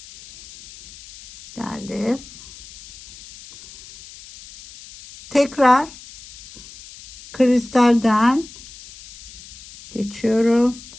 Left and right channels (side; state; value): left; noise; hiss, 19 dB below the sound